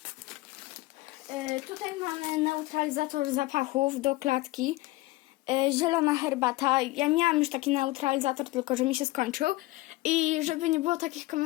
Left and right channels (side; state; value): right; quieter; 19.9 dB